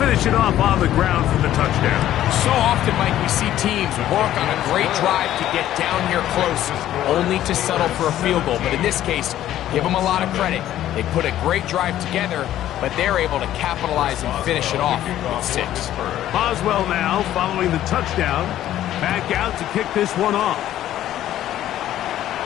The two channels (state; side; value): quieter; right; 12.6 dB